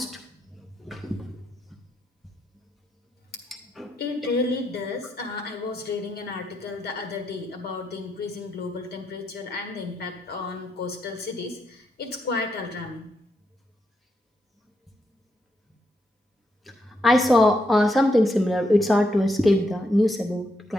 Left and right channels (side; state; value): both; normal; correlation 0.80